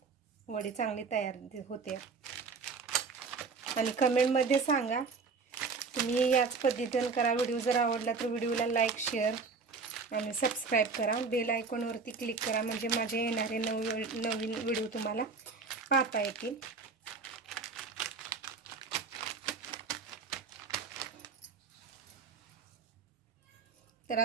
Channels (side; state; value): left; quieter; 4.7 dB